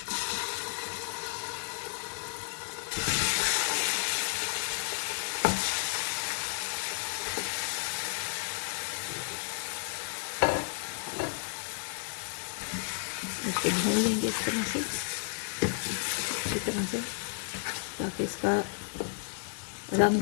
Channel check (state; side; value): silent; right; digital silence